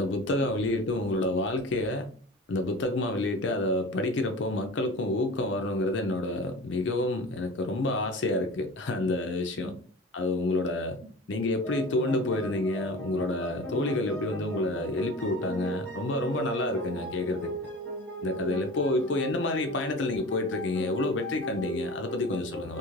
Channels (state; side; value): normal; both; correlation 0.36